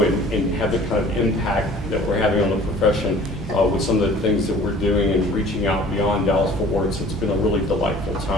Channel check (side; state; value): both; normal; correlation 0.49